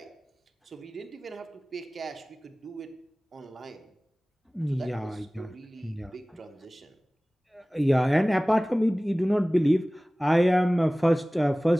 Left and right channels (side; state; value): both; normal; correlation 0.98